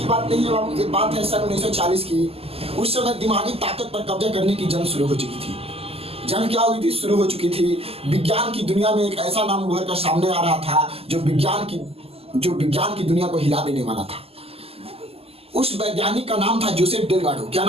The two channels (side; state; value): left; late; 0.29 ms